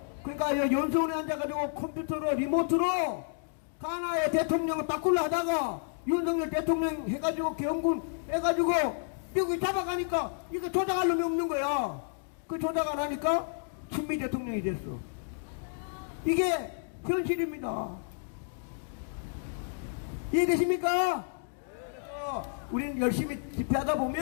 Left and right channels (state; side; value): silent; right; digital silence